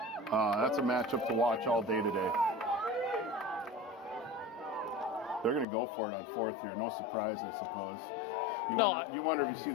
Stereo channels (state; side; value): drops out; right; at 5.7 s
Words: That's a matchup to watch all day today. They're going to go for it on 4th here. No surprise, I suppose. You wonder if you see